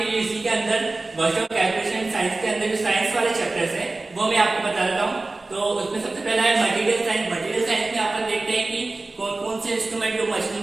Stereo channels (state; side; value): quieter; left; 3.2 dB